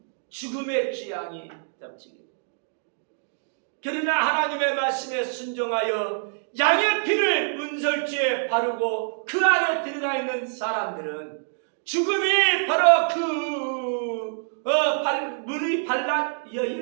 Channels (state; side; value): silent; left; digital silence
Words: 죽음의 재앙이 덮치게. 그러나 하나님의 말씀에 순종하여 양의 피를 문설주에 바르고 그 안에 들어가 있는 사람들은 죽음이 바로 문이